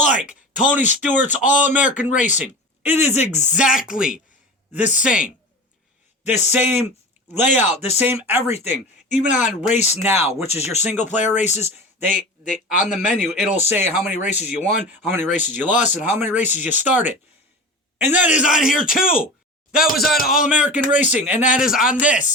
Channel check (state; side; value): normal; both; correlation 0.33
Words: Tony Stewart's All-American Racing. It is exactly the same. The same layout, the same everything. Even on Race Now, which is your single player races, they on the menu, it'll say how many races you won, how many races you lost, and how many races you started. And that is on here too. That was on All American Racing, and that is on